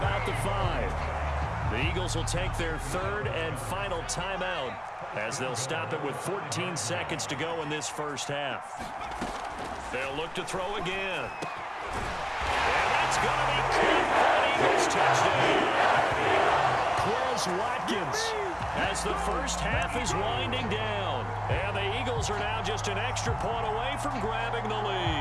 the 5. The Eagles will take their 3rd and final timeout as they'll stop it with 14 seconds to go in this first half. They'll look to throw again. And that's going to be caught for an Eagles touchdown. Quez Watkins as the first half is winding down. And the Eagles are now just an extra point away from grabbing the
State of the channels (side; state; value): both; identical; correlation 1.00